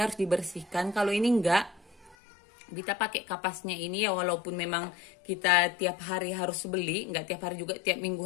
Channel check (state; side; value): drops out; right; at 2.1 s